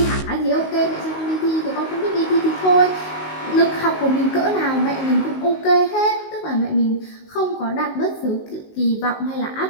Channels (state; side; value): late; right; 19 ms